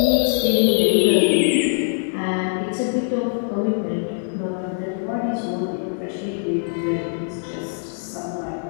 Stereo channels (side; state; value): right; silent; digital silence